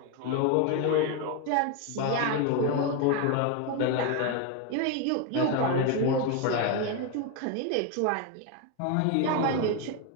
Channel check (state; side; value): different; both; correlation 0.02